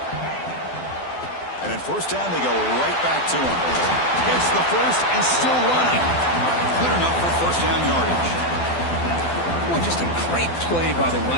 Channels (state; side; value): late; right; 12 ms